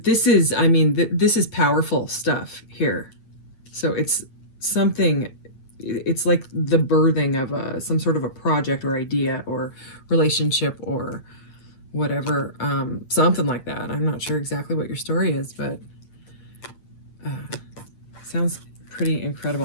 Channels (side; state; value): right; late; 8.9 ms